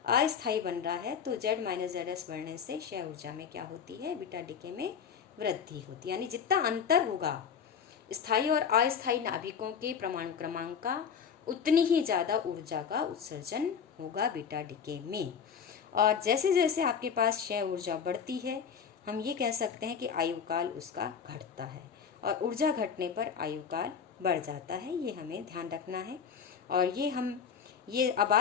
अस्थायी बन रहा है तो Z माइनस ZS बढ़ने से क्षय ऊर्जा में क्या होती है, बीटा डीके में वृद्धि होती है। यानी जितना अंतर होगा स्थायी और अस्थायी नाभिकों के परमाणु क्रमांक का उतनी ही ज़्यादा ऊर्जा का उत्सर्जन होगा बीटा डीके में। और जैसे जैसे आपके पास क्षय ऊर्जा बढ़ती है हम ये कह सकते हैं कि आयुकाल उसका घटता है और ऊर्जा घटने पर आयुकाल बढ़ जाता है। ये हमें ध्यान रखना है। और ये अब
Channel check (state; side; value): quieter; right; 7.1 dB